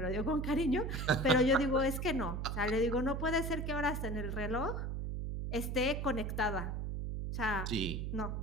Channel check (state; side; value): noise; right; hum, 3 dB below the sound